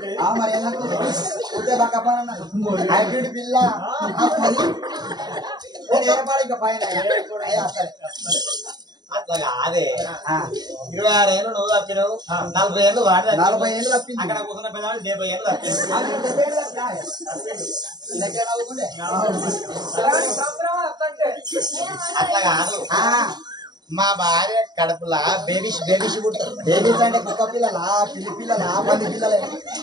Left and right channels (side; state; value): left; late; 0.20 ms